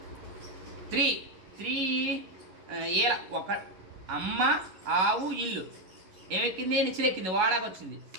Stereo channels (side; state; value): left; late; 11 ms